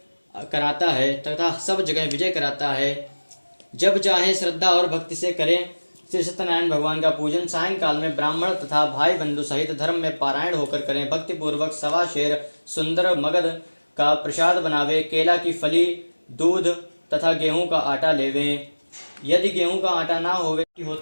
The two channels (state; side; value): inverted; both; correlation -1.00